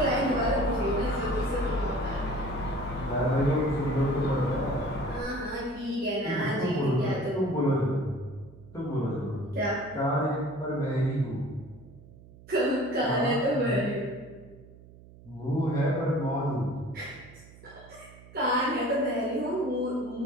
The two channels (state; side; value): noise; right; hum, 21 dB below the sound